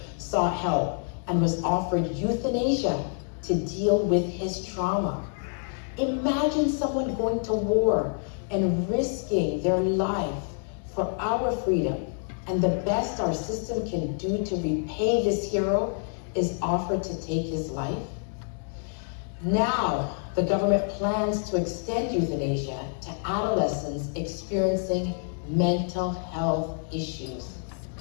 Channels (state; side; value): silent; right; 56 dB below the other